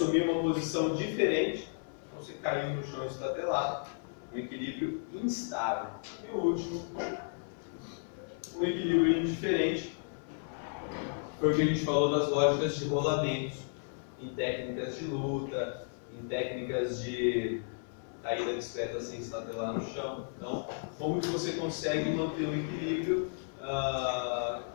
uma posição diferente, então você caiu no chão estatelado, um equilíbrio instável. E o último, um equilíbrio indiferente, foi o que a gente falou das lógicas de rolamentos, em técnicas de luta, em técnicas de caída discreta sem estatelar no chão. Então, como que você consegue manter um equilíbrio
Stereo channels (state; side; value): silent; right; 55 dB below the other